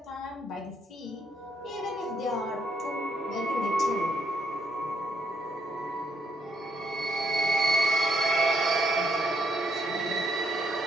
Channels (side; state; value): both; normal; correlation 0.74